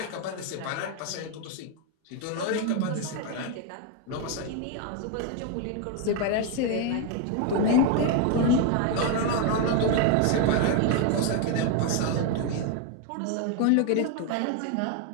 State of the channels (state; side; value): different; both; correlation 0.01